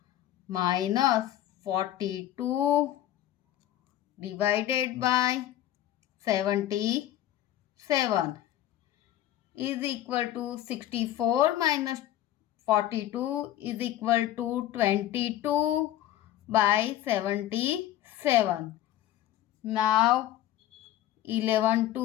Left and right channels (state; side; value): quieter; right; 13.0 dB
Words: minus 42 divided by 77 is equal to 64 minus 42 is equal to 22 by 77. Now 11